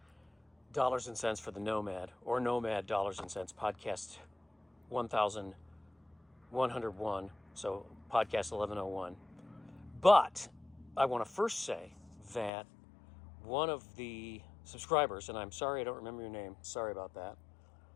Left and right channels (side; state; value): right; drops out; at 12.5 s